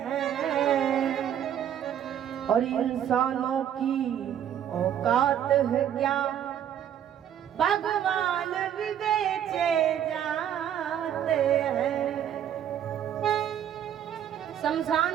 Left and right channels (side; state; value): left; quieter; 9.9 dB